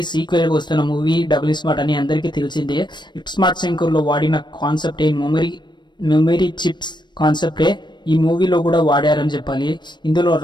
సీక్వెల్ గా వస్తున్న మూవీ డబుల్ స్మార్ట్ అని అందరికీ తెలిసిందే. స్మార్ట్ శంకర్ లో వాడిన కాన్సెప్ట్ మెమరీ చిప్స్ కాన్సెప్టే ఈ మూవీలో కూడా వాడారని చెప్పాలి. ఇందులో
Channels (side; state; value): right; late; 0.22 ms